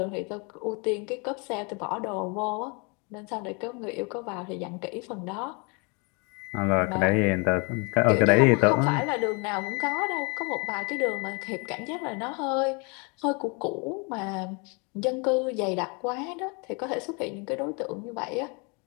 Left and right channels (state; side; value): quieter; right; 32.2 dB